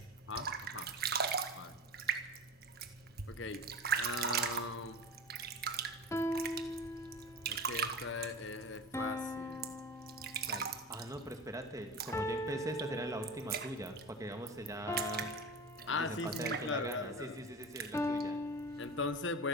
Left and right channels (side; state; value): both; normal; correlation 0.30